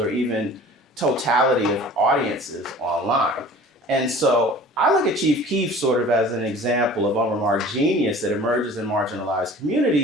even totality of audiences online. And so I look at Chief Keef sort of as an example of unremarked genius that emerges in marginalized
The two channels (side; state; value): both; normal; correlation 0.45